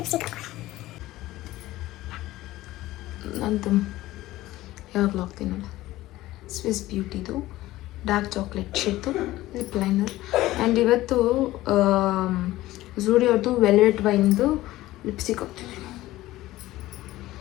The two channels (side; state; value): right; quieter; 16.6 dB